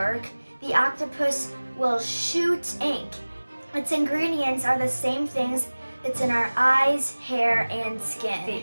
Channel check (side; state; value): both; inverted; correlation -1.00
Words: the octopus will shoot ink. Its ingredients are the same things that's in our eyes, hair, and